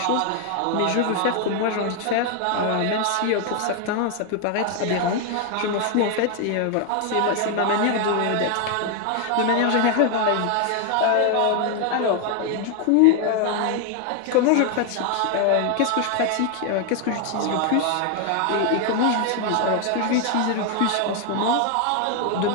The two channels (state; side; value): different; both; correlation 0.01